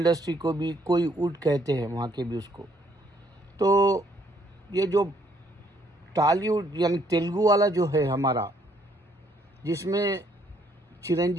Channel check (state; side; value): normal; both; correlation 0.67